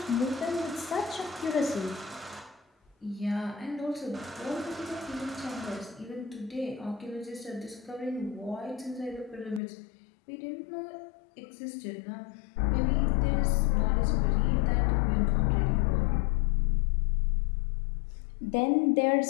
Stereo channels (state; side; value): drops out; right; at 9.6 s